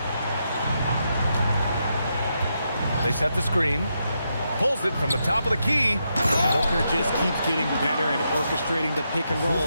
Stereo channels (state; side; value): inverted; both; correlation -0.82